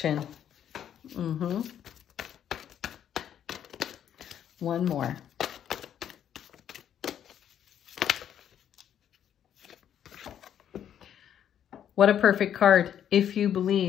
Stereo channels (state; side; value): quieter; right; 9.7 dB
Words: One more. What a perfect card. If you